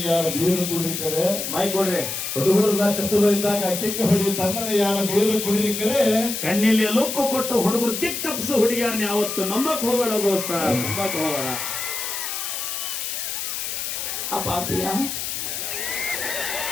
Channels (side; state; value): left; noise; hiss, 4 dB below the sound